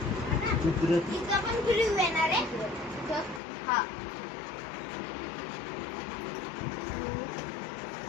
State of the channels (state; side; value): drops out; right; at 3.4 s